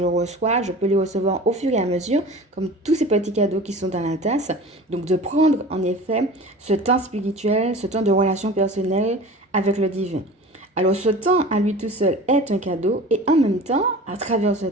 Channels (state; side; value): normal; both; correlation 0.38